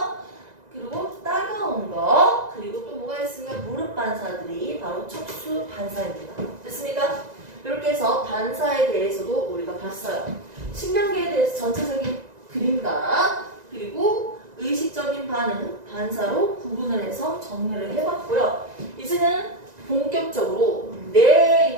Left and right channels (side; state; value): left; late; 1.9 ms